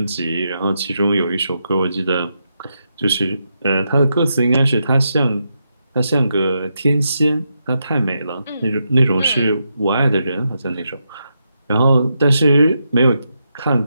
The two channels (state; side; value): inverted; both; correlation -0.84